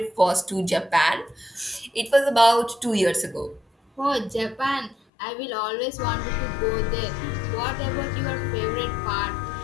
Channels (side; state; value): right; drops out; at 5.0 s